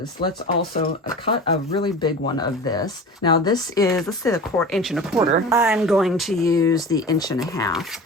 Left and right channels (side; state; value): both; normal; correlation 0.35